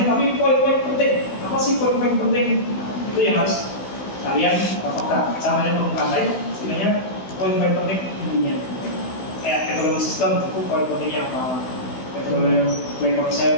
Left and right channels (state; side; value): late; right; 16 ms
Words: tapi poin-poin penting, apa sih poin-poin penting itu yang harus kalian apakah caranya bermukai, sebenarnya poin-poin penting intinya. Kayak metode sistem itu poin pentingnya apa, metode play